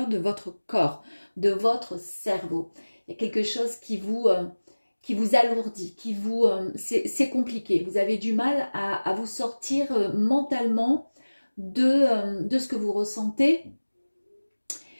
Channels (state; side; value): inverted; both; correlation -1.00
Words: de votre corps, de votre cerveau. Il y a quelque chose qui vous alourdit, c'est compliqué. Vous avez du mal à vous sortir mentalement de ce que vous ressentez.